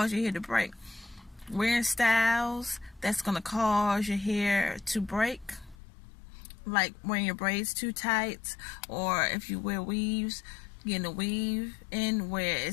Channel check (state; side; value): drops out; right; at 5.8 s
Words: your hair to break. Wearing styles that's going to cause your hair to break, like wearing your braids too tight, or if you wear weaves, getting a weave in where